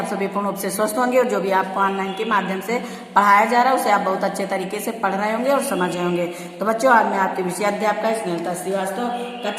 सभी पूर्ण रूप से स्वस्थ होंगे और जो भी आपको ऑनलाइन के माध्यम से पढ़ाया जा रहा है उसे आप बहुत अच्छे तरीके से पढ़ रहे होंगे और समझ रहे होंगे। तो बच्चों, आज मैं आपके विषय अध्यापका स्नेहलता श्रीवास्तव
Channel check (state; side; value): identical; both; correlation 1.00